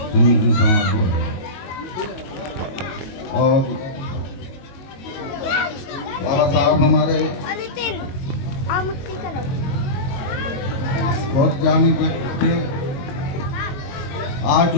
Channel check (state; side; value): late; right; 22 ms